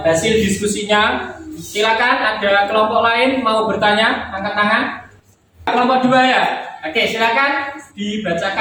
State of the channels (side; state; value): both; identical; correlation 1.00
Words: hasil diskusinya. Silakan, ada kelompok lain mau bertanya, angkat tangan. Kelompok 2 ya. Oke, silakan